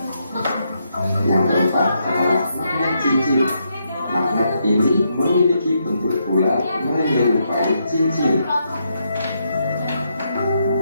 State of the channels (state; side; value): inverted; both; correlation -0.79